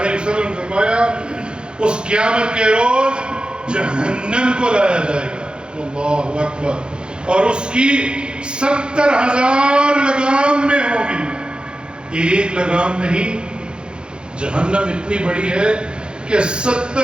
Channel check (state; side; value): late; left; 0.050 ms